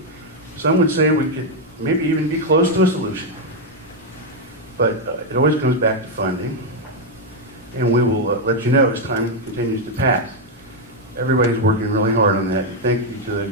Some would say we could maybe even be close to a solution. But it always comes back to funding. And we will let you know as time continues to pass. Everybody's working really hard on that. Thank you to the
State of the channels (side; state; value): both; normal; correlation 0.01